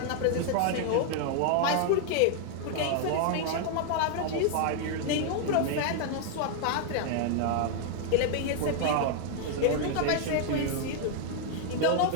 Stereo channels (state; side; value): different; both; correlation 0.00